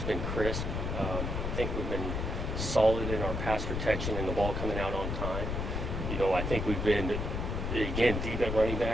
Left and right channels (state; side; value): noise; left; rumble, 2 dB below the sound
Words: been crisp. I think we've been solid in our pass protection and the ball coming out on time. I think we've been, again, deep at running